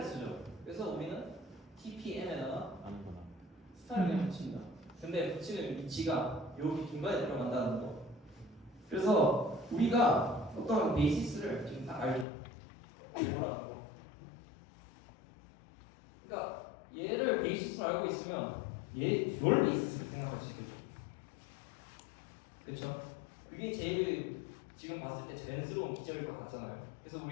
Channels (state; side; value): drops out; right; at 12.2 s